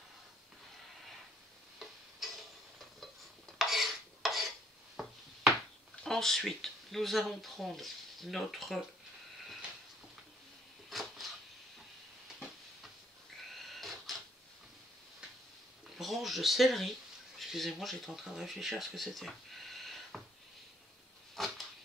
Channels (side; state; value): both; normal; correlation 0.67